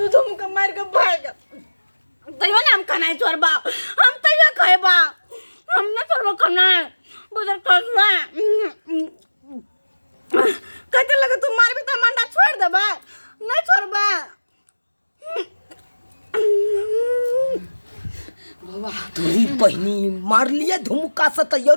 दूधम का मार के भाग तैयो ना हम खाना छोड़ बा हम तैयो खाए बा हम ना छोड़ खाना बुझर कसवा कहते लगे तू मार भी तो मंडा छोड़ दे बा नहीं छोड़ बा बाबा तोरी बहनी मार लिए धुमका से तैयो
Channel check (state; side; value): inverted; both; correlation -1.00